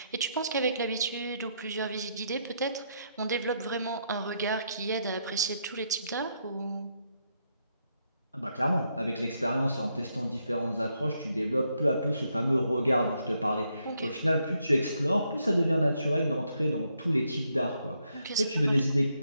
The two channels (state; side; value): inverted; both; correlation -0.78